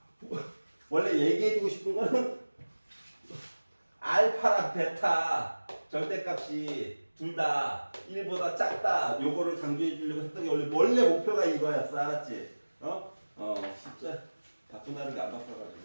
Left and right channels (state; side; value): inverted; both; correlation -1.00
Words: 원래 얘기해주고 싶은 거는 알파랑 베타 절대값이 둘 다 1보다 작다. 요거를 강조해 주려고 했던 게 원래 목표가 이거였어. 알았지? 진짜 바꾼다는 게 안